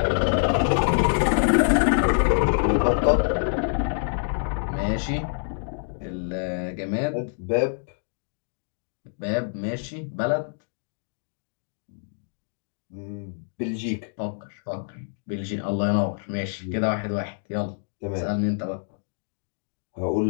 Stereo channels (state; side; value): silent; right; digital silence